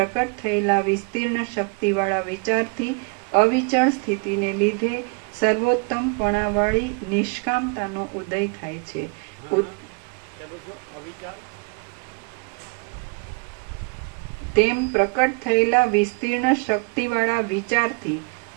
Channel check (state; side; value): quieter; left; 36.1 dB